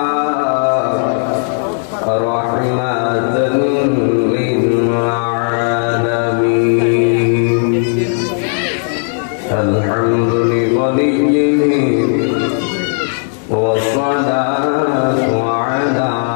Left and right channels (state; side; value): silent; right; 61 dB below the other